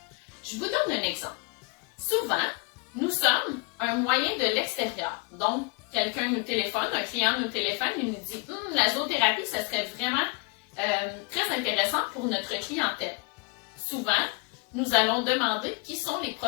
Je vous donne un exemple. Souvent, nous sommes un moyen de l'extérieur. Donc, quelqu'un nous téléphone, un client nous téléphone et nous dit « La zoothérapie, ça serait vraiment très intéressant pour notre clientèle. » Souvent, nous allons demander qui sont les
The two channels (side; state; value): right; quieter; 28.2 dB